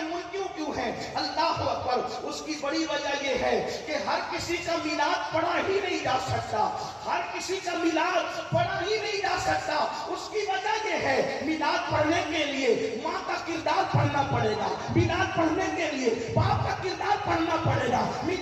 منکر کیوں ہیں؟ اللہ اکبر. اس کی بڑی وجہ یہ ہے کہ ہر کسی کا میلاد پڑھا ہی نہیں جا سکتا، ہر کسی کا میلاد پڑھا ہی نہیں جا سکتا. اس کی وجہ یہ ہے میلاد پڑھنے کے لیے ماں کا کردار پڑھنا پڑے گا، میلاد پڑھنے کے لیے باپ کا کردار پڑھنا پڑے گا،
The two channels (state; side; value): identical; both; correlation 1.00